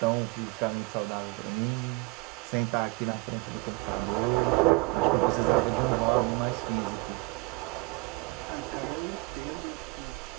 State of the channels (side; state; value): left; quieter; 24.5 dB